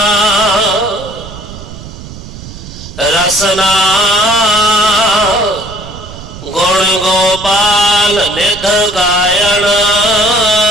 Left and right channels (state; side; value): noise; right; rumble, 14 dB below the sound